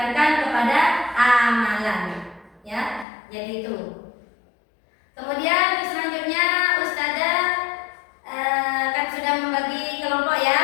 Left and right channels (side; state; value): right; drops out; at 3.1 s